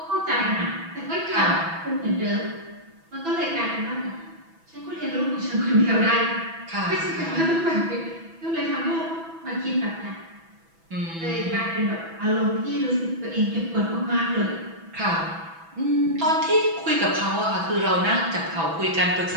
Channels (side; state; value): left; late; 6.1 ms